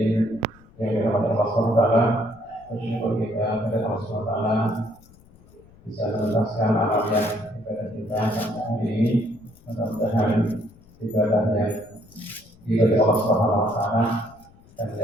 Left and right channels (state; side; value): noise; left; rumble, 26 dB below the sound